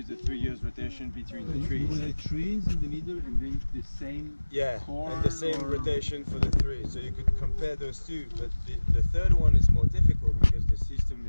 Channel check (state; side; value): inverted; both; correlation -1.00